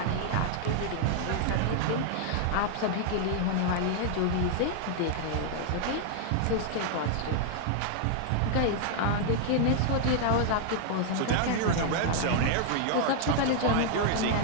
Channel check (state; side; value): different; both; correlation 0.00